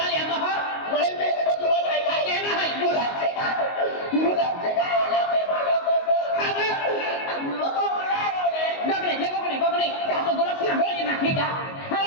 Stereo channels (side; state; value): right; late; 22 ms